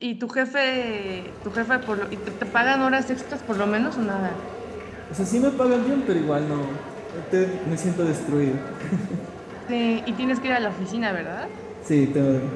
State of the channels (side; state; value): both; identical; correlation 1.00